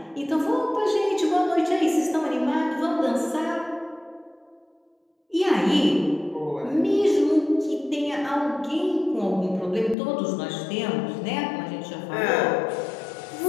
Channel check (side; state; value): right; drops out; at 10.0 s